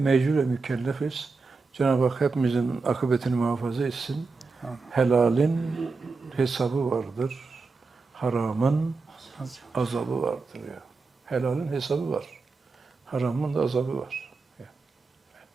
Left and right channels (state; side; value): quieter; left; 4.2 dB